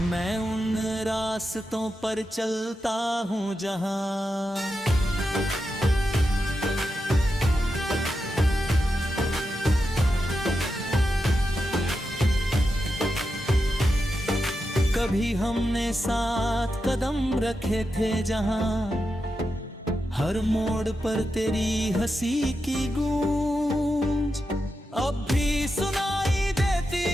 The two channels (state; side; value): normal; both; correlation 0.88